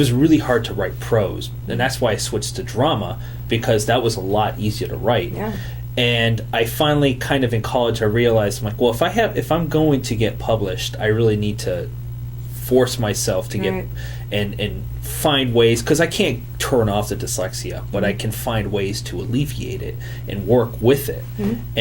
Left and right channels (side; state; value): both; identical; correlation 1.00